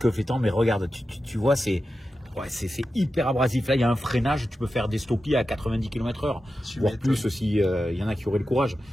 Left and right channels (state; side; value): normal; both; correlation 0.91